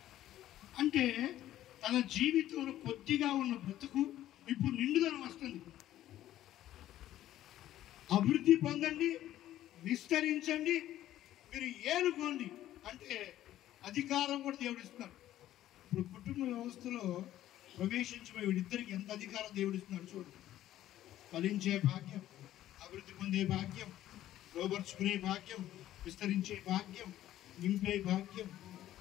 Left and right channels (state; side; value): quieter; right; 13.2 dB